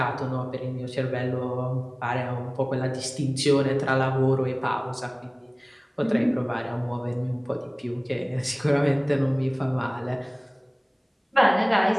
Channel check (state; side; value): identical; both; correlation 1.00